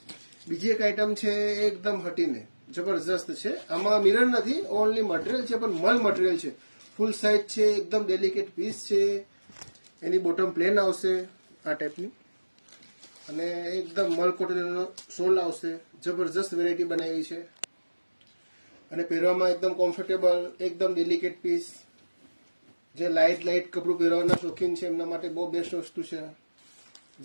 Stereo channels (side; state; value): both; inverted; correlation -1.00